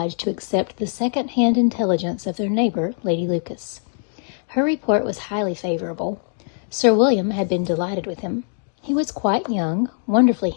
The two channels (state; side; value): silent; right; digital silence